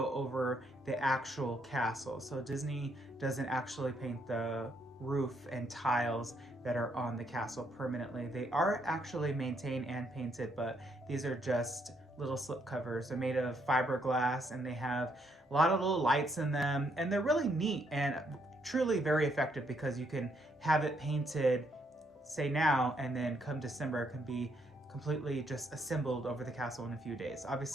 over the actual castle. So Disney doesn't actually paint the roof and tiles that are on the castle permanently. They are actually maintained and painted, but these are just little slip covers. They're made of fiberglass and they have a lot of little lights in them, and they're really neat and truly very effective because you can have it painted, say now, and then come December it can be completely just assembled over the castle in a few days.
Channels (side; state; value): both; normal; correlation 0.73